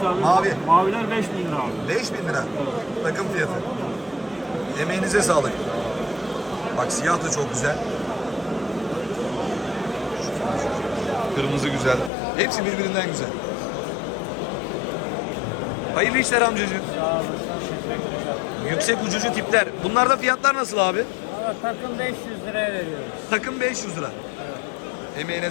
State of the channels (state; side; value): drops out; right; at 12.1 s